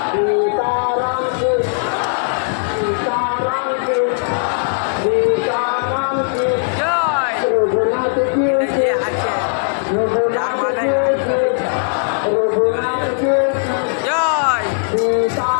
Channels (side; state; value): right; silent; digital silence